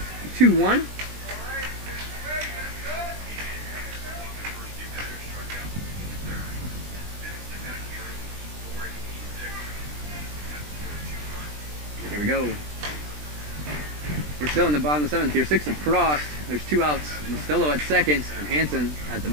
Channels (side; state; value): left; late; 20 ms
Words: 2-1. Here we go. We're still in the bottom of the 7th here. 6 have crossed. There's 2 outs. Mastillo at second and Hansen at